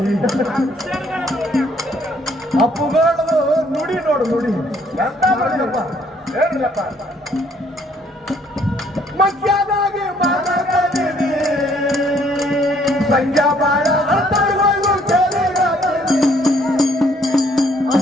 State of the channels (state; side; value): normal; both; correlation 0.64